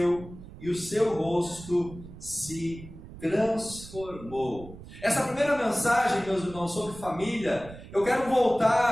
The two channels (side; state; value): right; noise; rumble, 16 dB below the sound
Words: e o seu rosto se transformou. Essa primeira mensagem, meus irmãos, sobre família, eu quero